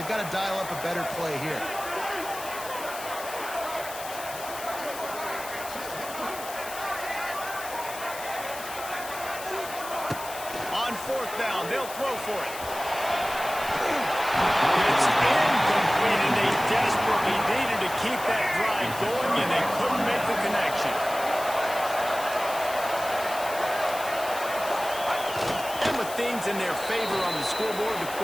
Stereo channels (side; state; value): left; noise; hiss, 11 dB below the sound